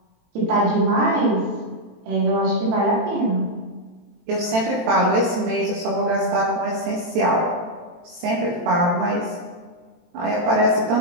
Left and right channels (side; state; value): left; late; 18 ms